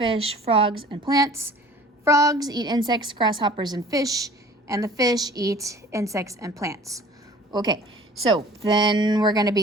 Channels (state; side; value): normal; both; correlation 0.47